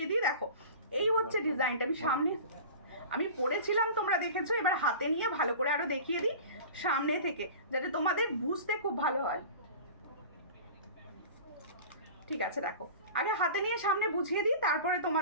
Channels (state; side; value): inverted; both; correlation -0.37